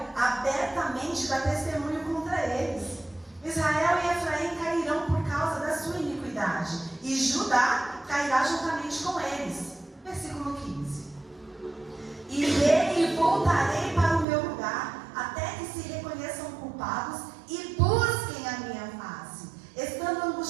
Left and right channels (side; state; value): left; drops out; at 14.2 s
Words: abertamente dá testemunho contra eles. Israel e Efraim cairão por causa da sua iniquidade, e Judá cairá juntamente com eles. Versículo 15. Irei e voltarei para o meu lugar, até que se reconheçam culpados e busquem a minha face. Estando